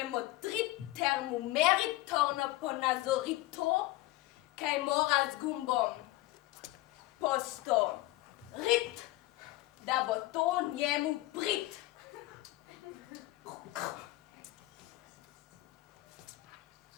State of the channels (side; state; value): right; quieter; 18.1 dB